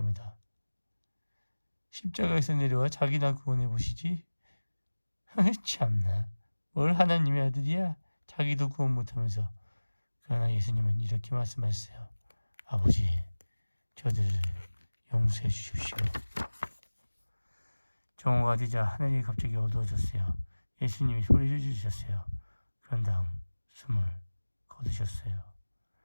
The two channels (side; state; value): both; inverted; correlation -1.00